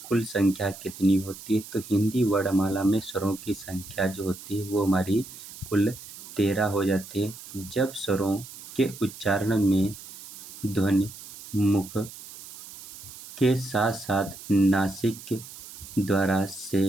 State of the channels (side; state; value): right; noise; hiss, 15 dB below the sound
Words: कुल संख्या कितनी होती है। तो हिंदी वर्णमाला में स्वरों की संख्या जो होती है वो हमारी कुल 13 हो जाती है। जब स्वरों के उच्चारण में ध्वनि मुख के साथ साथ नासिक के द्वारा से